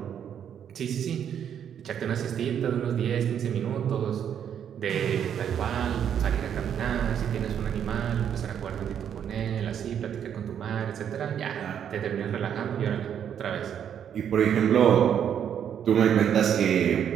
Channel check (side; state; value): left; quieter; 8.8 dB